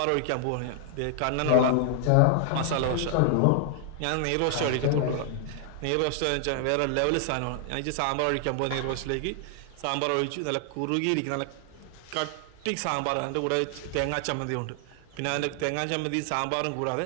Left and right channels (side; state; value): both; different; correlation 0.00